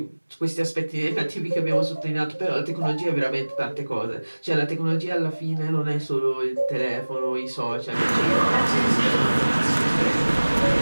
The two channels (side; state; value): both; inverted; correlation -1.00